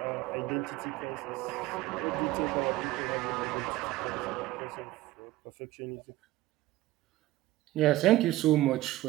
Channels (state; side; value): quieter; left; 16.5 dB